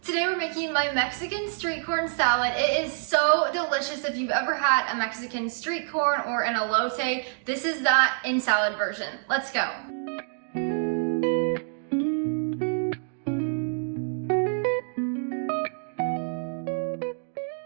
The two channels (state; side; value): silent; left; digital silence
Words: Today we're making my Mexican street corn salad. It is so delicious. If you've ever had a Mexican street corn or an elote, this is that in salad version. Let's go.